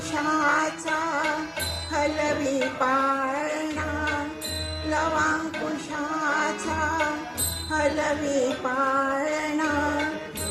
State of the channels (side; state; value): both; identical; correlation 1.00